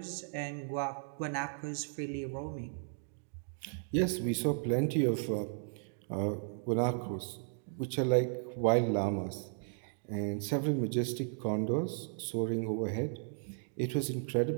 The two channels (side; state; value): left; silent; digital silence